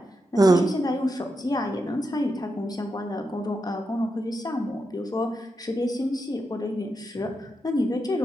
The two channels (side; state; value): both; normal; correlation 0.86